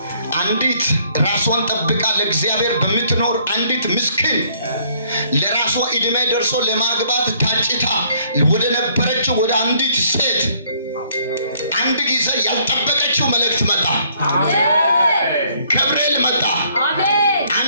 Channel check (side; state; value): both; inverted; correlation -0.64